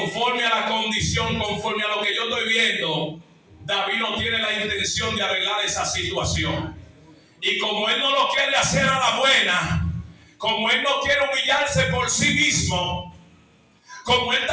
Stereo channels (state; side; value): identical; both; correlation 1.00